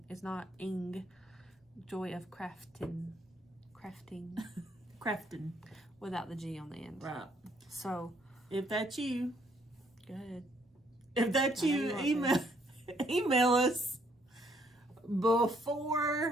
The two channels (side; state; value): both; normal; correlation 0.67